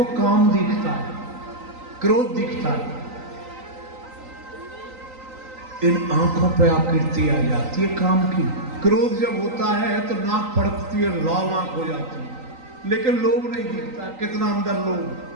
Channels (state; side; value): late; left; 3.9 ms